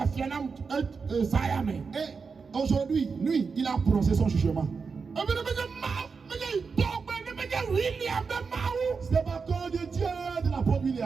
et Sayame. Et aujourd'hui, lui, il a prononcé son jugement. C'est pas cause de Dieu de l'apôtre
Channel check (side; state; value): left; quieter; 5.1 dB